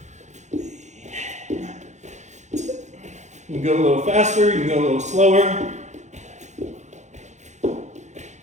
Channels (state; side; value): late; left; 0.34 ms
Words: You can go a little faster, you can go a little slower.